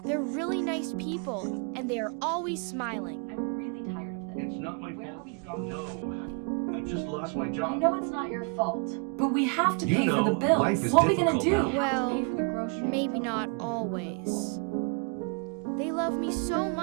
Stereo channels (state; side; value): quieter; left; 37.2 dB